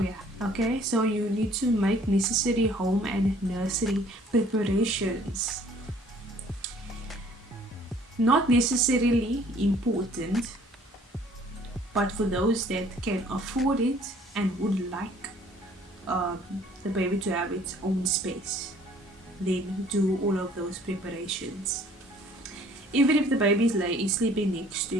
yeah, okay. So you need to make necessary home and nursery preparations. Not necessarily important, but for those that can afford it and would like the baby to have its own space, then do all of those preparations. Even if the baby is sleeping next to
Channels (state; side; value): normal; both; correlation 0.57